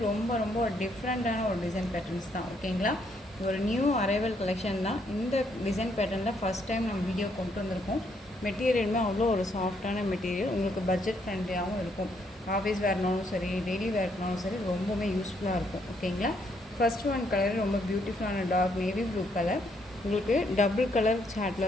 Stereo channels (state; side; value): normal; both; correlation 0.72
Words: ரொம்ப ரொம்ப ஒரு டிஃப்ரெண்ட்டான ஒரு டிசைன் பேட்டர்ன்ஸ் தான். ஓகேங்களா, ஒரு நியூ அரைவல் கலெக்ஷன் தான். இந்த டிசைன் பேட்டர்னில் ஃபஸ்ட் டைம் நம்ம வீடியோ கொண்டு வந்திருக்கோம். மெட்டீரியலுமே அவ்வளோ ஒரு சாஃப்டான மெட்டீரியல், உங்களுக்கு பட்ஜெட் ஃப்ரெண்ட்லியாகவும் இருக்கும். ஆஃபீஸ் வேர்னாலும் சரி, டெய்லி வேர்னாலும் சரி, ரொம்பவுமே யூஸ்ஃபுல்லாக இருக்கும். ஓகேங்களா, ஃபஸ்ட் ஒன் கலர் ரொம்ப பியூட்டிஃபுல்லான டார்க் நேவி ப்ளூ கலர். உங்களுக்கு டபுள் கலர்